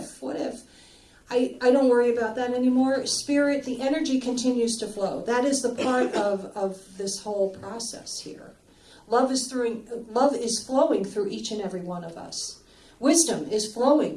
I don't worry about that anymore. Spirit, the energy continues to flow. That is the part of this whole process here. Love is flowing through each and every one of us. Wisdom is flowing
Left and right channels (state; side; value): identical; both; correlation 1.00